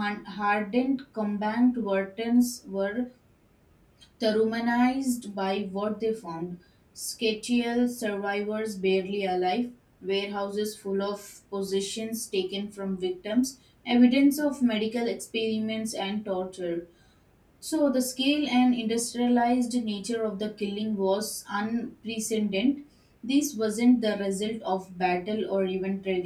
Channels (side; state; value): both; identical; correlation 1.00